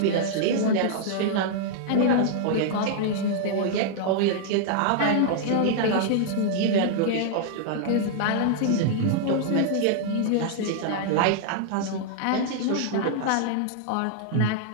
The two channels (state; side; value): different; both; correlation -0.01